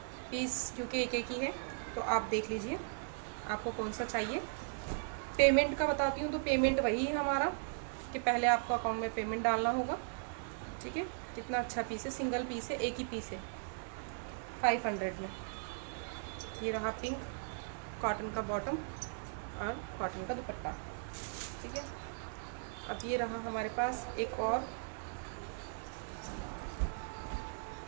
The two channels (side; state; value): left; silent; digital silence